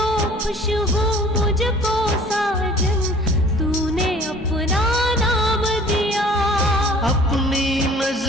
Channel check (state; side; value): normal; both; correlation 0.50